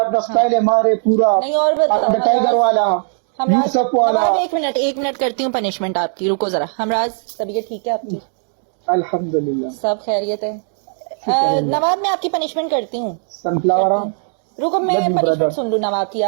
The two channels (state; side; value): silent; left; digital silence